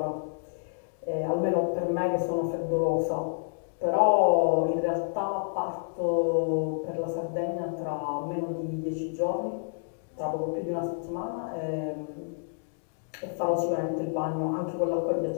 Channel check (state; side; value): silent; right; digital silence